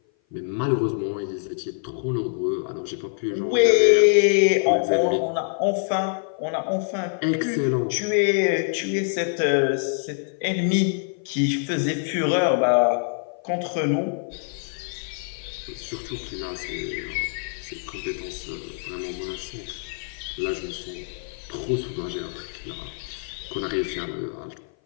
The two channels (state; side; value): silent; right; 56 dB below the other